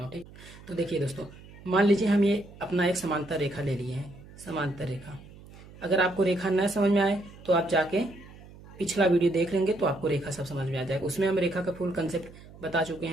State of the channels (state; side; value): noise; right; hum, 20 dB below the sound